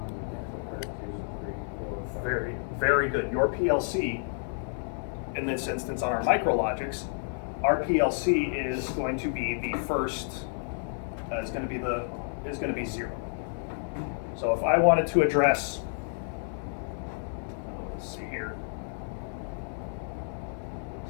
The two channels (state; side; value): silent; right; 58 dB below the other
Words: and input card two, three, four, five. Very, very good. Your PLC, in this instance on our micrologics, our PLC is going to be the first, is going to be 0. So if I wanted to address, let's see here.